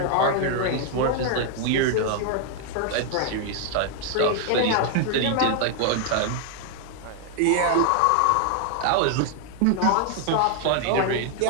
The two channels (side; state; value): both; different; correlation 0.00